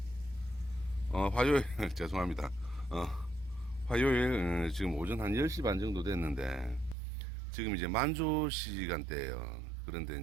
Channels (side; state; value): left; drops out; at 7.0 s